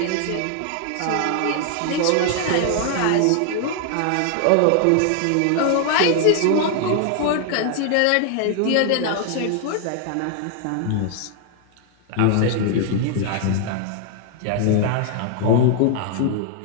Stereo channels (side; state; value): both; different; correlation 0.00